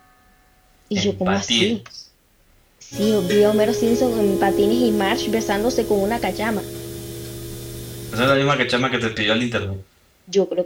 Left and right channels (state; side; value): identical; both; correlation 1.00